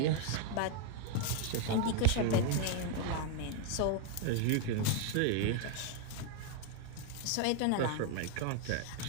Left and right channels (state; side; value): different; both; correlation 0.00